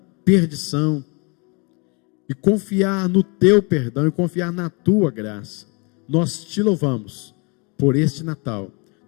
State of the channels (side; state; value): right; quieter; 31.8 dB